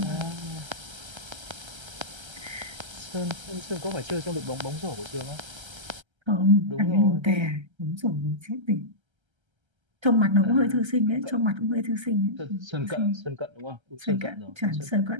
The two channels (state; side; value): late; left; 1.3 ms